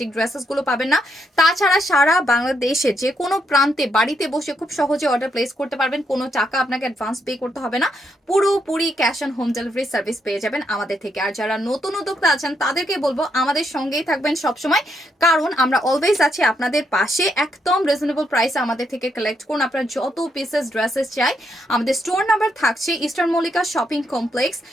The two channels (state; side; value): normal; both; correlation 0.78